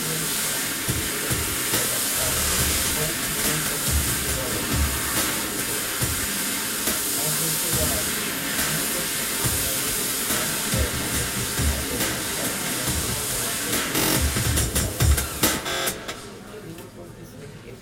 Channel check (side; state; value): both; identical; correlation 1.00